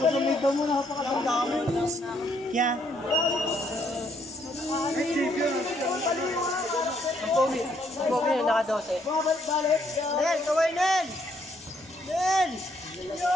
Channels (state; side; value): normal; both; correlation 0.70